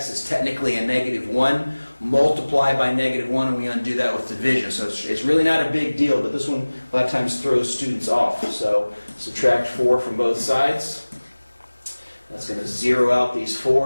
is technically a -1. Multiply by -1, and we undo that with division. So it's really not a big deal, but this one a lot of times throws students off. So subtract 4 from both sides. That's going to zero out these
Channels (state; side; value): inverted; both; correlation -1.00